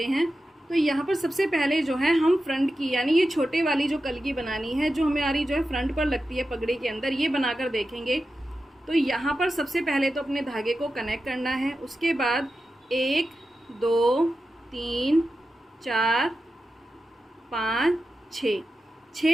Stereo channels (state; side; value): normal; both; correlation 0.91